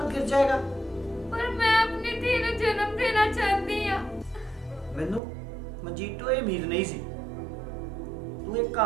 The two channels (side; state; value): left; drops out; at 5.2 s